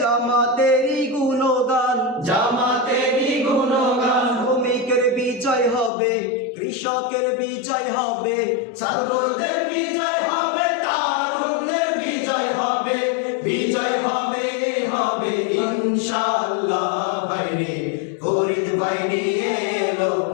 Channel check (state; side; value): drops out; right; at 5.9 s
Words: জামাতেরই গুণগান, জামাতেরই গুণগান। শ্রমিকের বিজয় হবে, কৃষকের বিজয় হবে, ছাত্রদের বিজয় হবে, তারুণ্যের বিজয় হবে, বিজয় হবে হবে ইনশাআল্লাহ। ভাইরে ফরিদ ভাই নিয়ে এলো